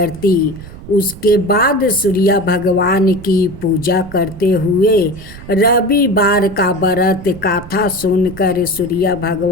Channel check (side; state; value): right; noise; rumble, 15 dB below the sound